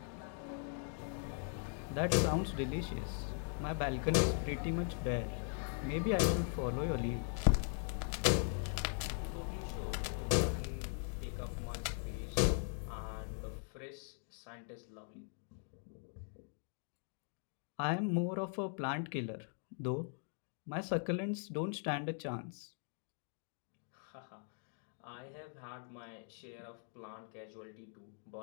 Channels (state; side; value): silent; right; 51 dB below the other